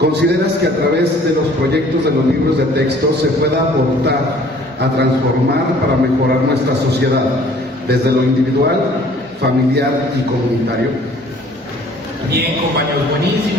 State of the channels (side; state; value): both; normal; correlation 0.54